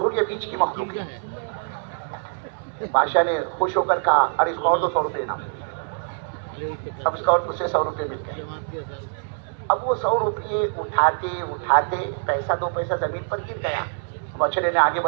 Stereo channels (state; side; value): silent; left; 62 dB below the other